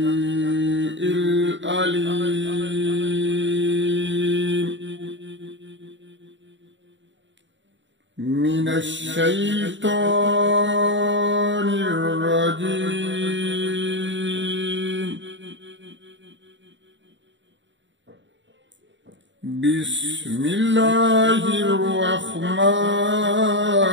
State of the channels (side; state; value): left; late; 0.54 ms